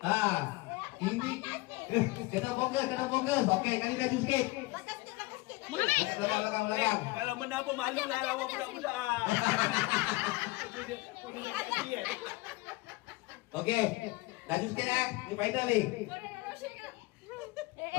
Ini kena fokus. Okey, kali laju sikit. Muhammad. Belakang. Kalau menang pun malu lah lawan budak-budak. Dia jangan kecil kan. Okey, laju sikit Ni final ni.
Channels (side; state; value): right; quieter; 22.2 dB